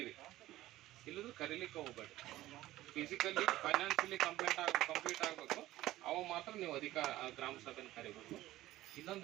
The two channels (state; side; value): quieter; left; 15.8 dB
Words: ಇಲ್ಲದ್ರೆ ಕರೀಲಿಕ್ಕೆ ಹೋಗ್ಬೇಡಿ. ಫಿಸಿಕಲಿ ಫೈನಾನ್ಷಿಯಲಿ ಕಂಪ್ಲೀಟ್ ಆಗಬೇಕು, ಅವ ಮಾತ್ರ ನೀವು ಗ್ರಾಮ ಸಭೆನ ಕರಿಬೇಕು.